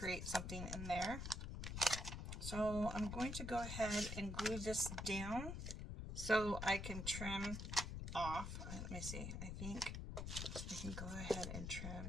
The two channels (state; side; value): noise; left; rumble, 5 dB below the sound